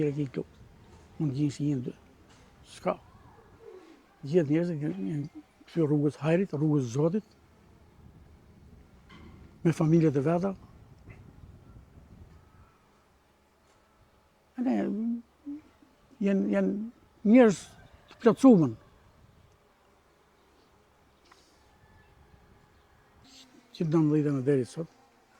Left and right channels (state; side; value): identical; both; correlation 1.00